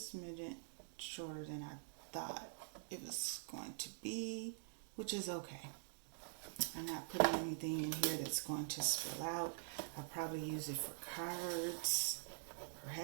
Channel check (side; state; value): left; silent; digital silence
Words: shorter than I thought it was going to be, which is okay. I'm not putting anything in here that's going to spill out. I'll probably use it for cards or